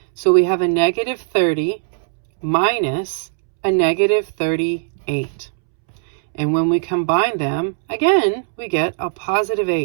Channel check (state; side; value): silent; left; 67 dB below the other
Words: So we have a negative 30 minus a negative 38. And when we combine them, again, we get a positive